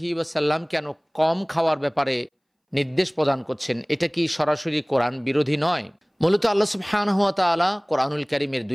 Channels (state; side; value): identical; both; correlation 1.00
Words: ওয়াসাল্লাম কেন কম খাওয়ার ব্যাপারে নির্দেশ প্রদান করছেন? এটা কি সরাসরি কোরআন বিরোধী নয়? মূলত আল্লাহ সুবহানাহু ওয়া তাআলা কোরআনুল কারীমের